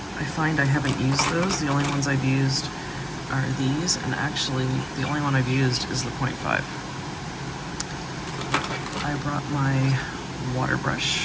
I find I haven't used those. The only ones I've used are these, and actually the only one I've used is the 0.5. I brought my water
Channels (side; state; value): both; identical; correlation 1.00